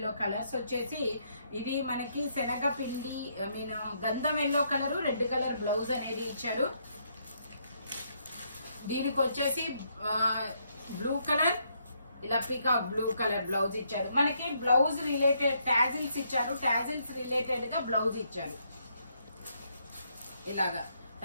కలర్స్ వచ్చేసి ఇది మనకి శనగపిండి గంధం yellow colour, red colour blouse అనేది ఇచ్చారు. దీనికి వచ్చేసి బ్లూ కలర్ ఇలా పీకాక్ బ్లూ కలర్ బ్లౌజ్ ఇచ్చారు. మనకి బ్లౌజ్ రిలేటెడ్ టాజిల్స్ ఇచ్చారు. టాజిల్స్ రిలేటెడ్ గా బ్లౌజ్ ఇచ్చారు. ఇలాగా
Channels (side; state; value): both; inverted; correlation -0.74